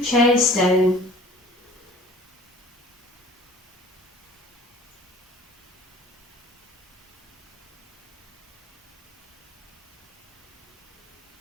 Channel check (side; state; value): both; normal; correlation 0.47